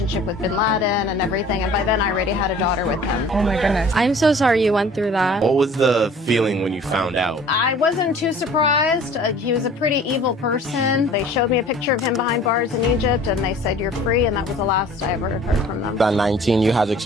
with bin Laden and everything. And by then, I already had a daughter with him. Oh my goodness. I'm so sorry you went through that. What was the feeling when you found out? I wasn't too surprised. He was a pretty evil person. They showed me a picture of him behind bars in Egypt and they said, "You're free," and that was the last I ever heard from them. At 19, you had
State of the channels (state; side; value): normal; both; correlation 0.48